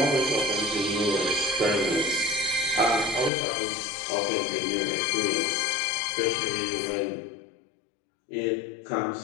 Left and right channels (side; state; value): right; drops out; at 3.3 s